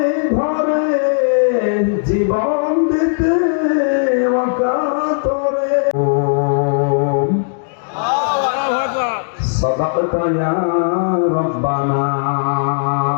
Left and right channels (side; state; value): right; silent; digital silence